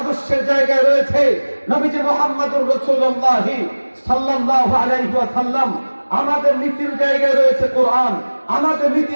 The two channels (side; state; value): both; inverted; correlation -1.00